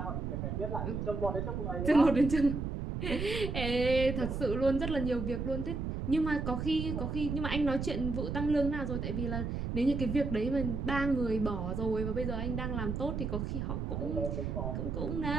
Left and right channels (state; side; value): noise; right; rumble, 3 dB below the sound